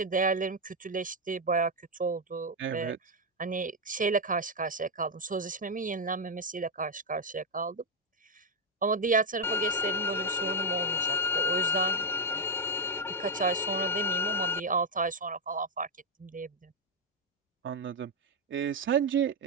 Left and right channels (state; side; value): normal; both; correlation 0.01